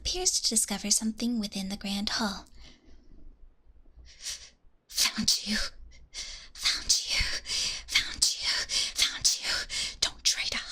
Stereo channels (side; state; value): both; identical; correlation 1.00